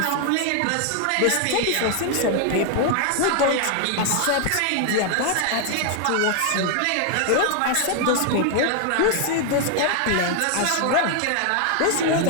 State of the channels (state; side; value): different; both; correlation 0.00